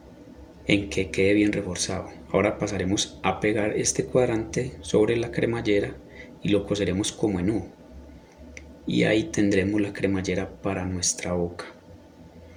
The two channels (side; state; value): both; identical; correlation 1.00